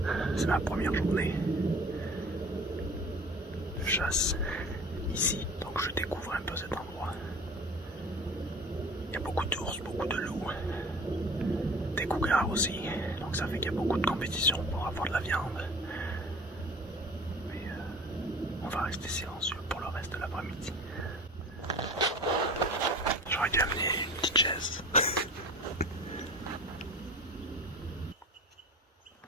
C'est ma première journée de chasse ici, donc je découvre un peu cet endroit. Il y a beaucoup d'ours, beaucoup de loups, des cougars aussi, donc ça fait qu'il y a beaucoup de compétition pour avoir de la viande. Mais on va rester silencieux pour le reste de l'après-midi. J'aurais dû amener une petite chaise.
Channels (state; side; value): normal; both; correlation 0.42